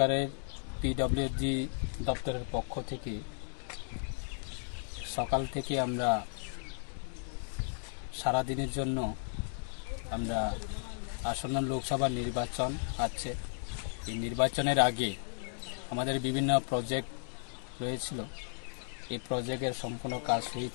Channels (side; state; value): right; silent; digital silence